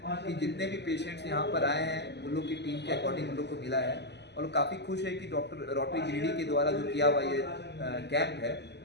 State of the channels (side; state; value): right; late; 0.50 ms